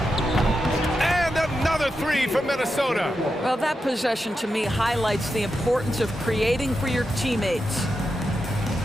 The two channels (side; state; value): both; normal; correlation 0.88